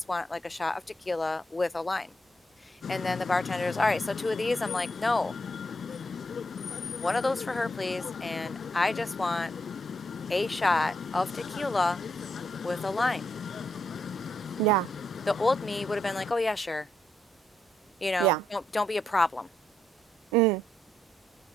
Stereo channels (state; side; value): normal; both; correlation 0.78